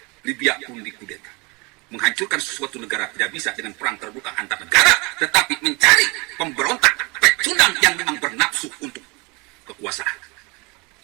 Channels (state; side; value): quieter; left; 28.0 dB